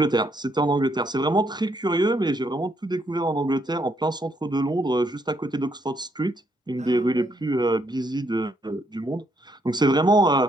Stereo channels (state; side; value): normal; both; correlation 0.73